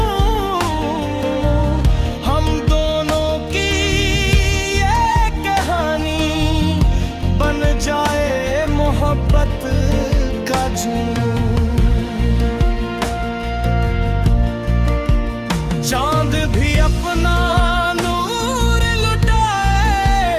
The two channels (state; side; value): identical; both; correlation 1.00